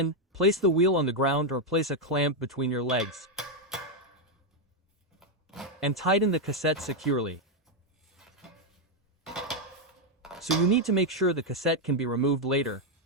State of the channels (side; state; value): both; normal; correlation 0.01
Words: place the wheel on the ground or place a clamp between your legs. And tighten the cassette securely. So you need to make sure the cassette can be removed later,